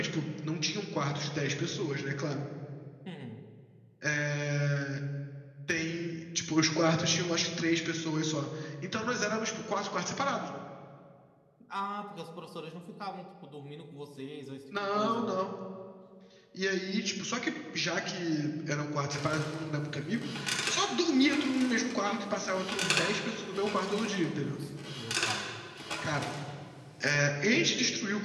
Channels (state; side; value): identical; both; correlation 1.00